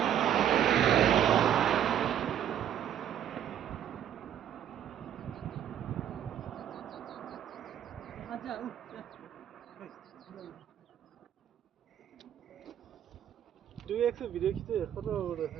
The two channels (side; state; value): left; quieter; 10.1 dB